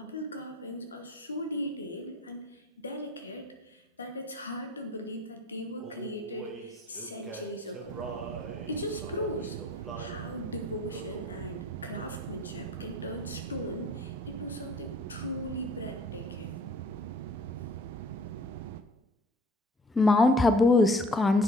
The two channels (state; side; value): normal; both; correlation 0.52